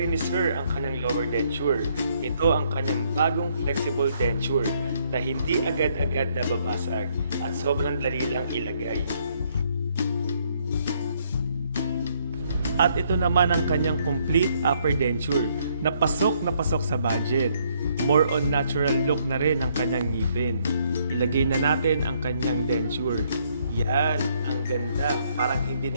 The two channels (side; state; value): both; inverted; correlation -0.70